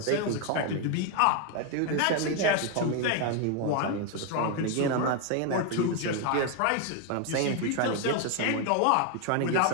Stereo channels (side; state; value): both; different; correlation 0.01